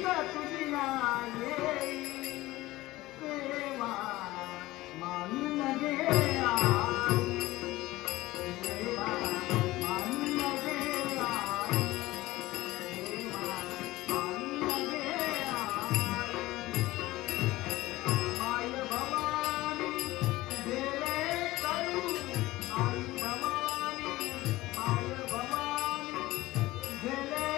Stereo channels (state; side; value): quieter; right; 18.0 dB